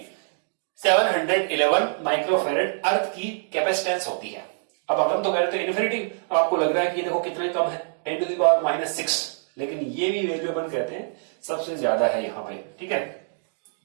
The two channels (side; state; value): left; silent; digital silence